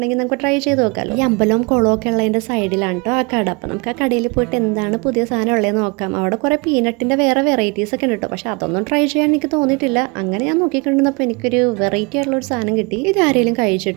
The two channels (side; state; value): left; quieter; 29.0 dB